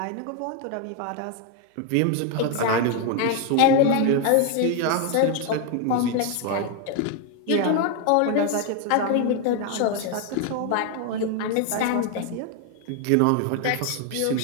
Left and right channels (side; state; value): both; different; correlation 0.01